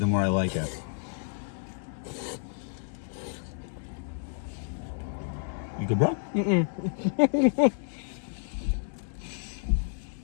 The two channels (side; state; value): right; silent; digital silence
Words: more I like it. You good, bro?